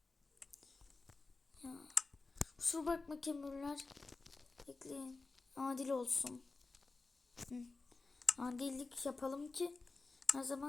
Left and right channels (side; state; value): right; quieter; 3.8 dB